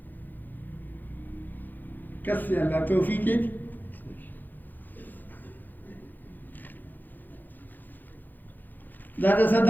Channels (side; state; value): right; late; 0.087 ms